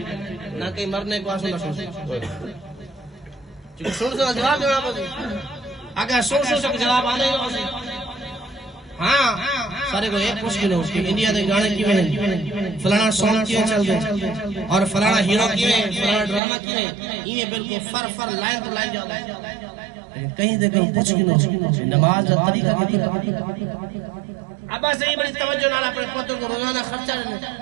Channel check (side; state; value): left; drops out; at 16.4 s